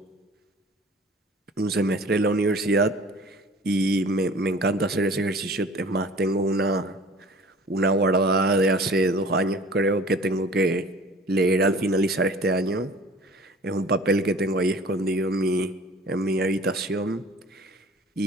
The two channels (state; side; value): normal; both; correlation 0.47